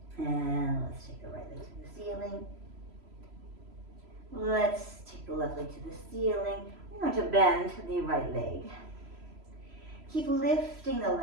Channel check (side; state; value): left; late; 3.0 ms